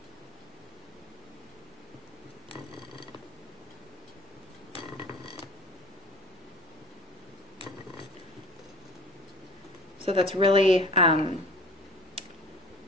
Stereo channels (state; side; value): normal; both; correlation 0.43